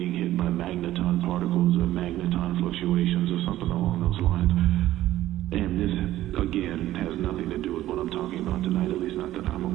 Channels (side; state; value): left; quieter; 14.4 dB